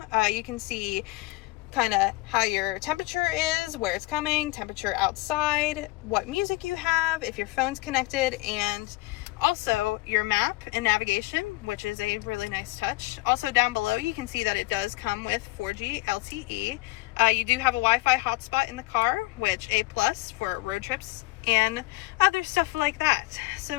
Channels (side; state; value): right; quieter; 21.8 dB